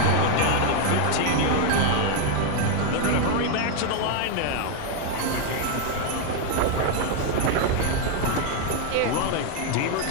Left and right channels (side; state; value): both; different; correlation 0.00